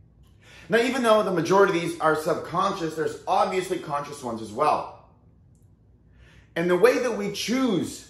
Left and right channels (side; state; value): both; identical; correlation 1.00